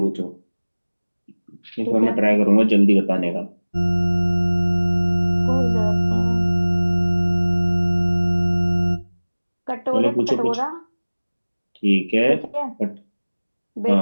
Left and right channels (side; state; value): both; inverted; correlation -1.00